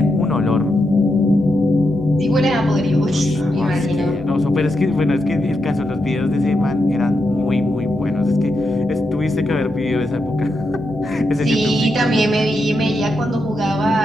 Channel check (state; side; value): noise; right; hum, 17 dB below the sound